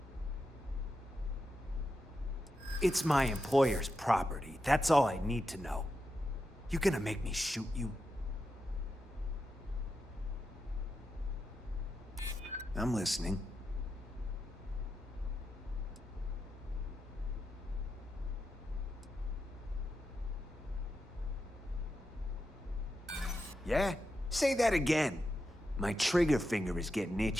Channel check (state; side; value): normal; both; correlation 0.87